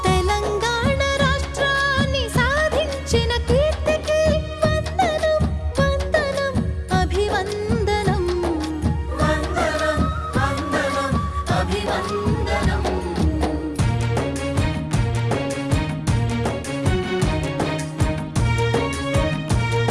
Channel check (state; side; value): identical; both; correlation 1.00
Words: తెలంగాణ రాష్ట్రాన్ని సాధించిన కీర్తికి వందనం వందనం అభివందనం. వందనం వందనం అభివందనం.